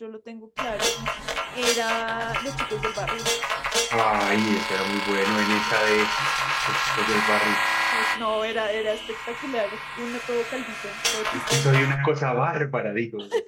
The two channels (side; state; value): both; identical; correlation 1.00